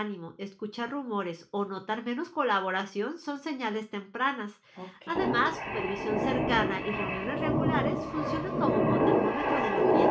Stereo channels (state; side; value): identical; both; correlation 1.00